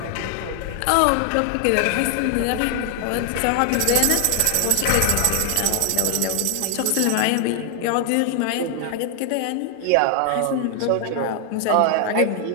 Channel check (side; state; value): both; different; correlation 0.00